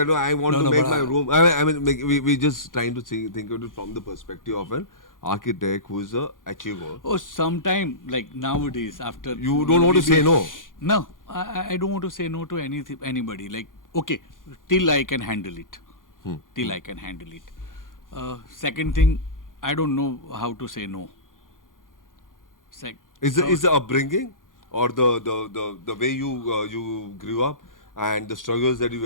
no, I want No, to no, make but my I- room. I mean, we just trying to think of it from the perspective of an architect who is a achiever. oh, sometime, like nowadays, after. You don't want to maybe- say no. No, I don't want to say no to anybody. Like, okay, till I can handle it. Till I can handle it. Second thing, I don't know how to say no. Is the upbringing or the way you grew up and the struggles that you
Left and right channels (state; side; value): late; right; 0.89 ms